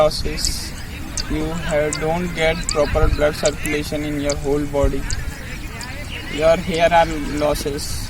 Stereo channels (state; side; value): identical; both; correlation 1.00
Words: don't get proper blood circulation in your whole body, your hair are losses,